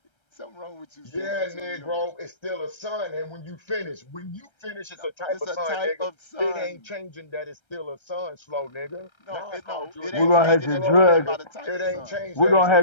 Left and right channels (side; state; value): right; late; 1.3 ms